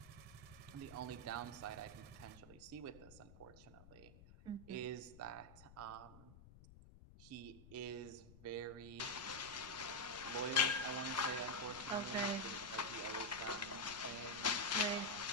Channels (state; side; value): noise; left; rumble, 18 dB below the sound